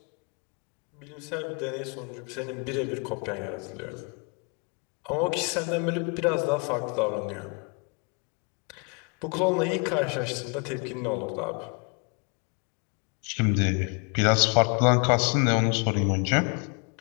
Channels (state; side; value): quieter; right; 36.0 dB